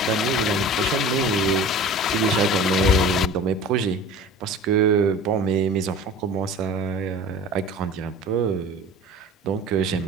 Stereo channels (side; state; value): both; normal; correlation 0.39